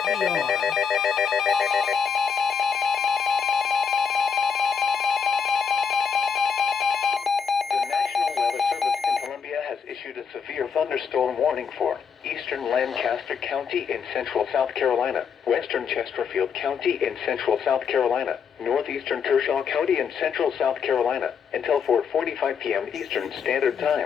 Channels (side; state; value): right; quieter; 6.4 dB